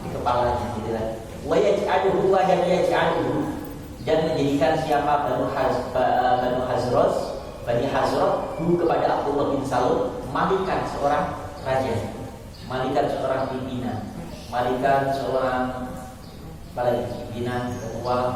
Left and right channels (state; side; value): identical; both; correlation 1.00